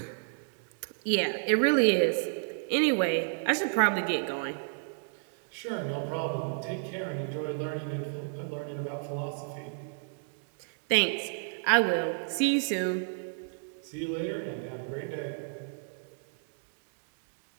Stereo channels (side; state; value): left; silent; digital silence